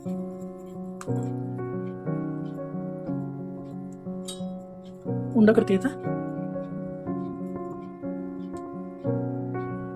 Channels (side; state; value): both; identical; correlation 1.00